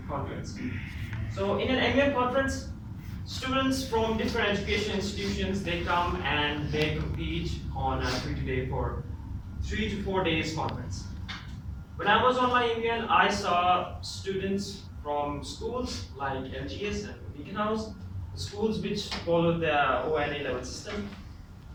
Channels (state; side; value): identical; both; correlation 1.00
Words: conference. So in an MUN conference, students from different education institutions, they come and they compete on a free-to-day for 3 to 4 days conference. When I was on my MUN, I saw students from schools like LGS and Beacon House, schools which followed the ONA level system.